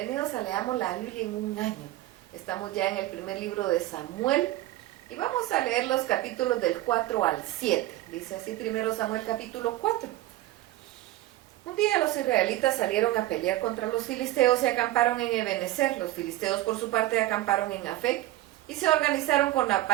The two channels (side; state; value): left; quieter; 16.0 dB